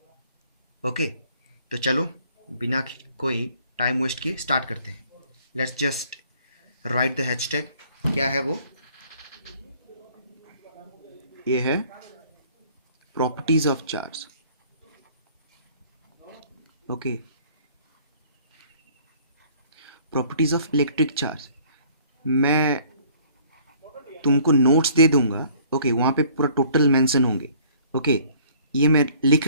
Okay, तो चलो बिना कोई टाइम वेस्ट किए स्टार्ट करते हैं. Let's just right the hashtag. क्या है वो? ये है properties of charge. Okay, properties of electric charge. मैं तुमको नोट्स दे दूंगा. ओके, वहाँ पे पूरा टोटल मेंशन होंगे. ओके, ये मैं लिख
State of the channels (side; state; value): both; inverted; correlation -0.57